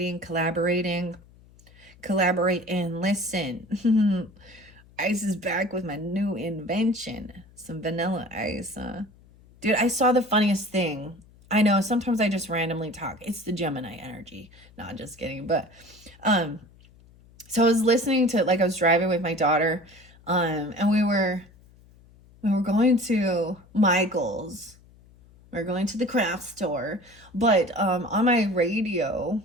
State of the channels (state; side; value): noise; left; hum, 26 dB below the sound